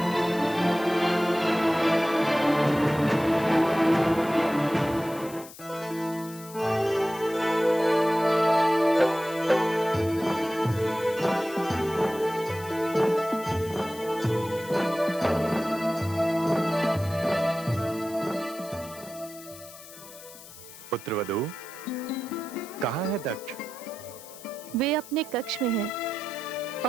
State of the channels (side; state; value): left; noise; hiss, 17 dB below the sound